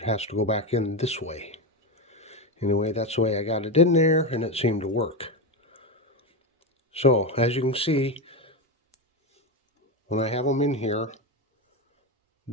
It has to go back in this way. Anyway, that's the way I got it in there, and it seemed to work. So, as you can see, when I have them in here,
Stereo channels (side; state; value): both; normal; correlation 0.13